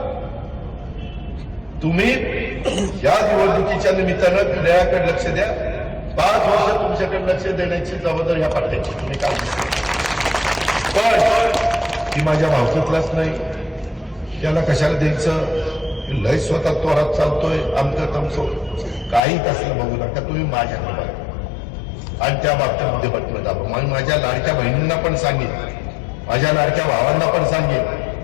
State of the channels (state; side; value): drops out; right; at 19.2 s